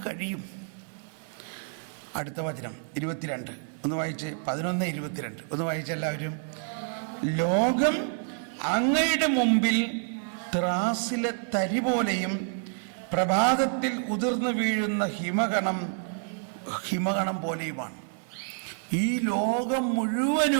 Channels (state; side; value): silent; left; 59 dB below the other